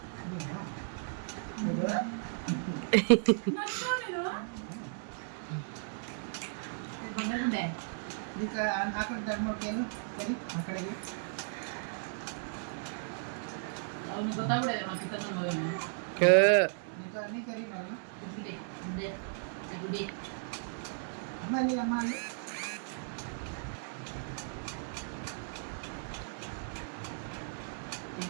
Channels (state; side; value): silent; left; digital silence